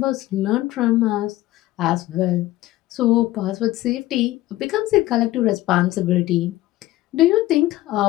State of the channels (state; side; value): quieter; right; 16.3 dB